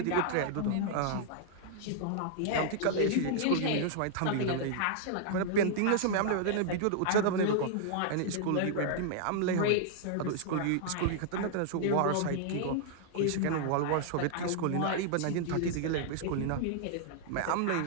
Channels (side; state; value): both; different; correlation -0.01